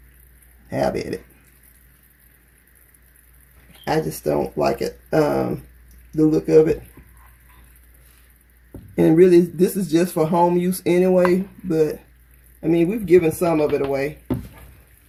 have at it. I just don't like it, the look of it. And really, this is just for home use anyway, but I mean, we've given some of it away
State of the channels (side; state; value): both; identical; correlation 1.00